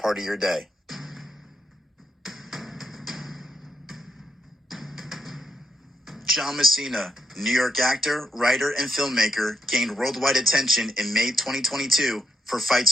of your day. John Messina, New York actor, writer, and filmmaker, gained worldwide attention in May 2022 for Fight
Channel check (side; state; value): both; normal; correlation 0.82